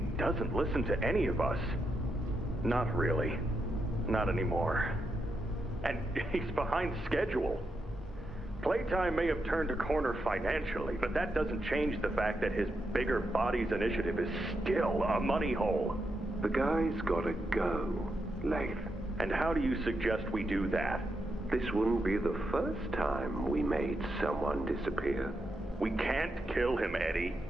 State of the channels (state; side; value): normal; both; correlation 0.84